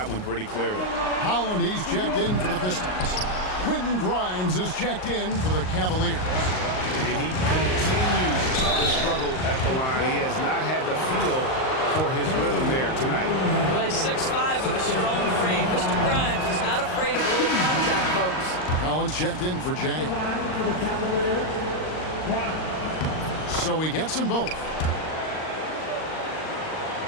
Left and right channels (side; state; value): right; late; 38 ms